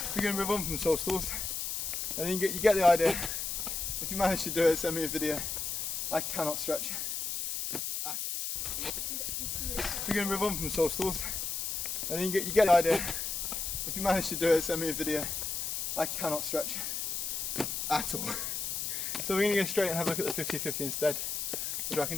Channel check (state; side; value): noise; left; hiss, 2 dB below the sound